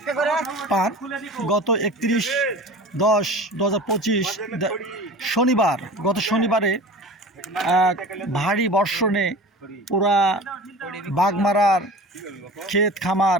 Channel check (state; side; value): normal; both; correlation 0.38